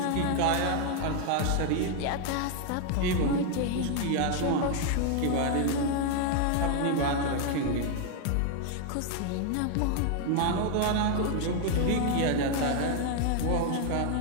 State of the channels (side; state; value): both; different; correlation 0.01